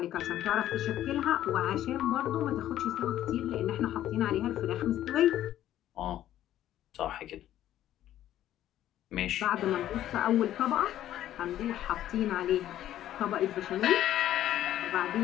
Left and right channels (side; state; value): right; quieter; 12.4 dB